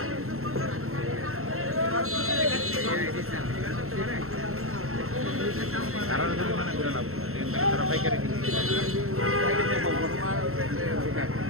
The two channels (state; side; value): late; left; 0.62 ms